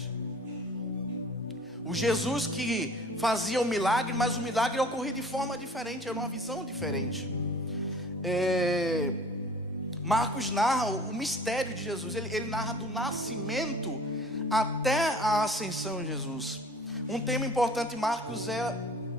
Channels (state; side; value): normal; both; correlation 0.48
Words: O Jesus que fazia o milagre, mas o milagre ocorria de forma diferente, era uma visão diferente. Marcos narra o mistério de Jesus, ele narra do nascimento até a ascensão de Jesus. Um tema importante em Marcos é